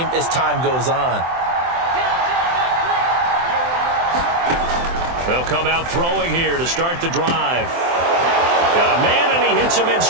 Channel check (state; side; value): late; left; 23 ms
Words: as time goes on. They'll come out throwing here to start the drive. Got a man, and he hits him in